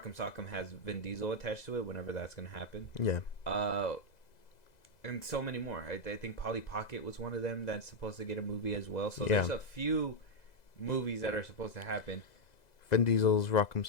Sock'em has Vin Diesel attached to it whenever that's going to happen. Yeah. And so many more. I think Polly Pocket was one of them that's supposed to get a movie as well. So there's a few movies that are supposed to happen. Vin Diesel's Rock'em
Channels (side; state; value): right; late; 2.0 ms